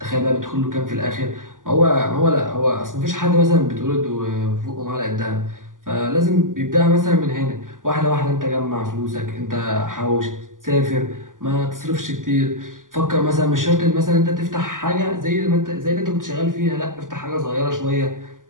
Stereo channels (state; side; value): late; left; 0.88 ms